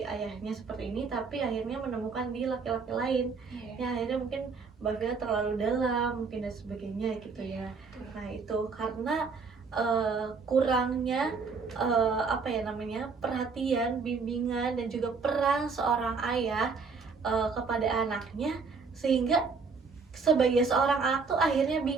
ayahnya seperti ini, tapi akhirnya menemukan di laki-laki lain ya akhirnya mungkin Mbak Vila terlalu dalam mungkin dan sebagainya gitu ya. Nah itu karena kurangnya apa ya namanya, perhatian, bimbingan dan juga peran seorang ayah kepada anaknya, sehingga sebagai seorang anak tuh akhirnya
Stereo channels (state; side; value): quieter; left; 4.9 dB